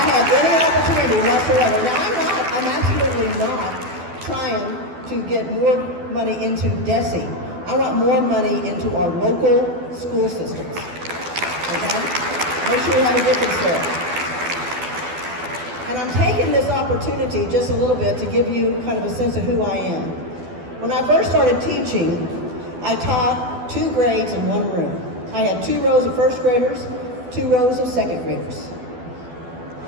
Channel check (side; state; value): left; late; 12 ms